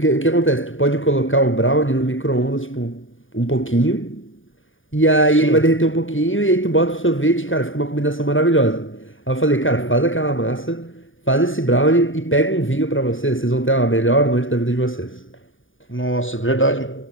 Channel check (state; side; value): late; right; 0.57 ms